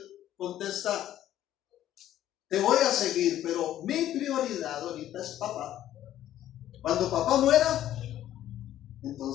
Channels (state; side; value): quieter; right; 12.3 dB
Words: contesta, te voy a seguir, pero mi prioridad ahorita es papá. Cuando papá muera,